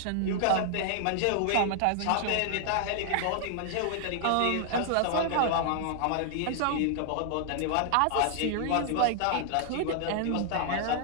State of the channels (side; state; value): both; different; correlation 0.00